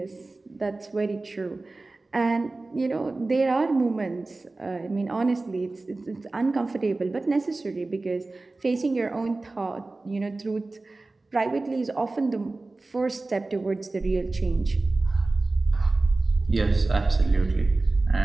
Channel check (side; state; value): left; quieter; 3.3 dB